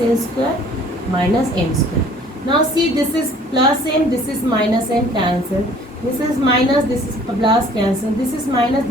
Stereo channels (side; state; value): both; normal; correlation 0.54